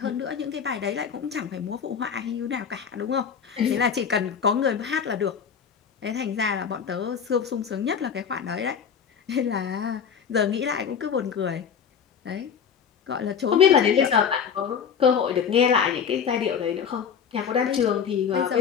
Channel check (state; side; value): quieter; right; 7.2 dB